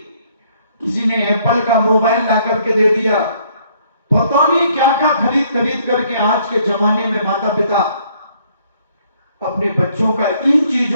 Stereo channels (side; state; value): both; inverted; correlation -0.65